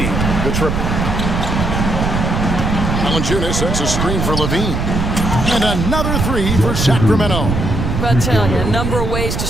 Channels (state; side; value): noise; right; rumble, 1 dB below the sound